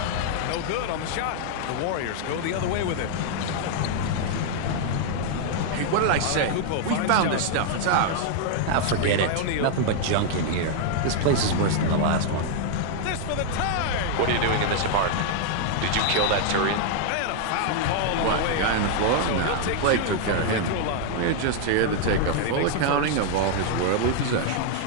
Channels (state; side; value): different; both; correlation 0.00